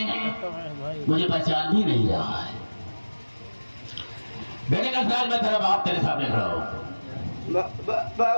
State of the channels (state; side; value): inverted; both; correlation -1.00